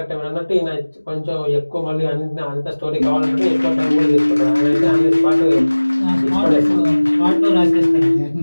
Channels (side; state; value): both; inverted; correlation -1.00